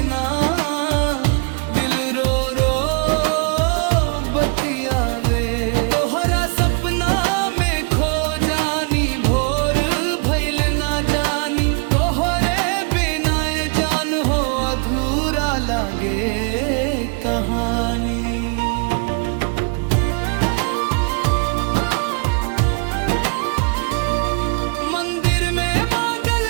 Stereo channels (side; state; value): left; quieter; 36.0 dB